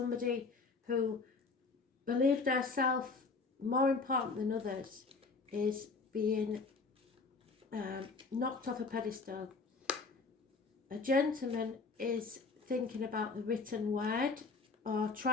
who believed herself more important than others is being knocked off a pedestal. A gentleman is thinking about the written word, or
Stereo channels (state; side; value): quieter; right; 4.2 dB